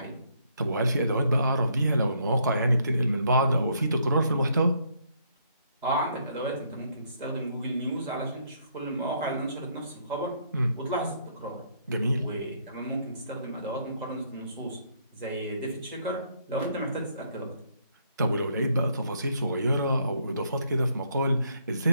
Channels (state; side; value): inverted; both; correlation -0.70